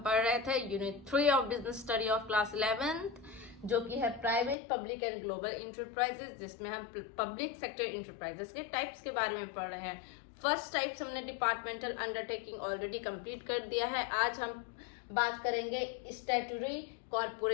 पढ़ रहे थे unit 3 of business study of class 11th, जो कि है private, public and global enterprises, जिसमें हम पब्लिक सेक्टर इंटरप्राइजेस के टाइप्स के बारे में पढ़ रहे हैं। फर्स्ट टाइप्स हमने डिपार्टमेंटल अंडरटेकिंग ऑलरेडी कंप्लीट कर दिया है। आज हम बात करेंगे स्टैट्यूटरी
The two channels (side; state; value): right; drops out; at 4.5 s